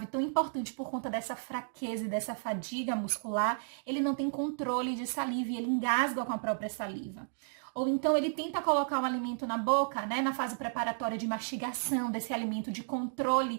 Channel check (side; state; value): left; silent; digital silence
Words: tão importante por conta dessa fraqueza e dessa fadiga muscular, ele não tem controle de saliva e ele engasga com a própria saliva. Ou então ele tenta colocar um alimento na boca, né, na fase preparatória de mastigação desse alimento, de